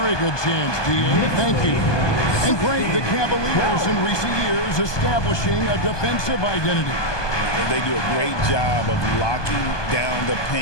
good chance, D.A. Thank you. And great, the Cavaliers in recent years establishing a defensive identity. They do a great job of locking down the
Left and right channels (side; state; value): right; late; 1.2 ms